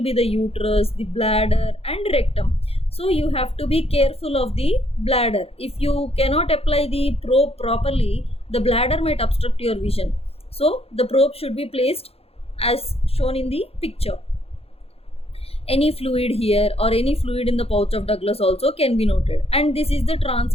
be the uterus, the bladder and rectum. So you have to be careful of the bladder. If you cannot apply the probe properly, the bladder might obstruct your vision. So the probe should be placed as shown in the picture. Any fluid here or any fluid in the pouch of Douglas also can be noted. And this is the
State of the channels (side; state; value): right; late; 0.29 ms